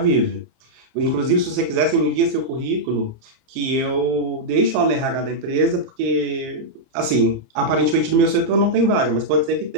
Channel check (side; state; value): left; late; 30 ms